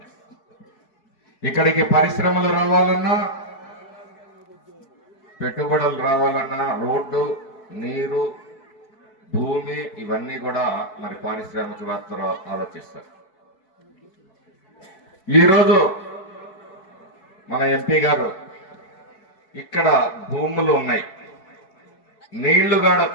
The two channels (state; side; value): late; right; 4.6 ms